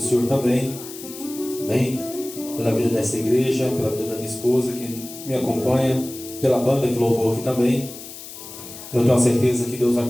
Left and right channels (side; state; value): left; noise; hiss, 13 dB below the sound